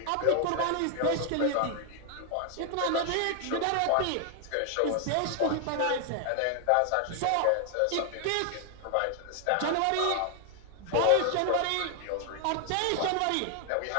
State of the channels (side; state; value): both; different; correlation 0.00